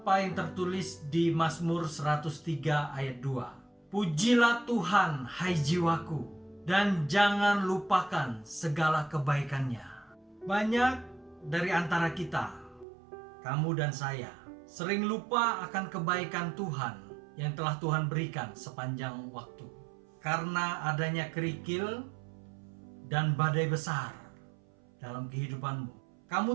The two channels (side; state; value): left; drops out; at 12.9 s